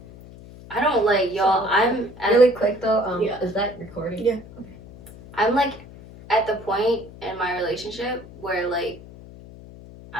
I don't like y'all. I'm really quick though. Is that recording? Yeah. Okay. I'm like at the point in my relationship where like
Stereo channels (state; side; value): noise; left; hum, 18 dB below the sound